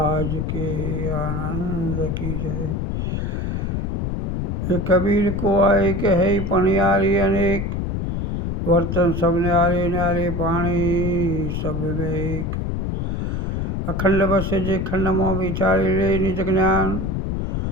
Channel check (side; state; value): left; noise; rumble, 1 dB below the sound